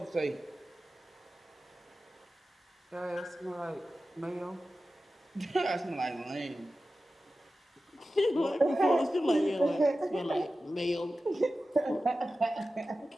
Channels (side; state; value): both; normal; correlation 0.94